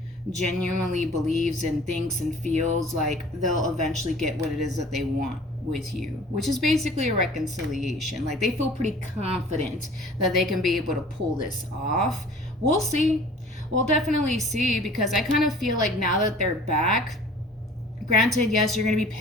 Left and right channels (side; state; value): both; normal; correlation 0.47